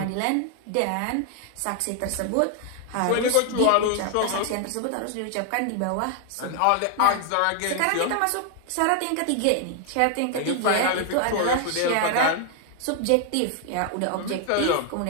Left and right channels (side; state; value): both; different; correlation 0.00